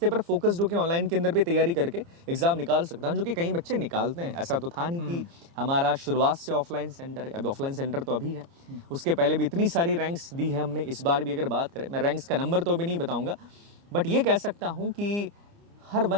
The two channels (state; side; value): late; left; 29 ms